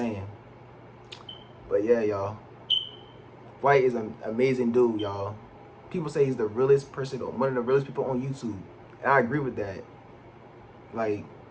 But yeah, y'all. Flight is an amazing dude, y'all. People say he's the realest person, one of the realest people on YouTube, and I agree with that. Like,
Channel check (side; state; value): both; identical; correlation 1.00